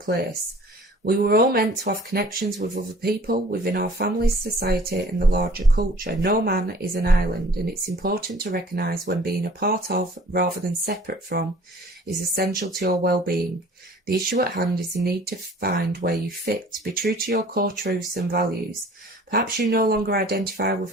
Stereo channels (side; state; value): both; normal; correlation 0.50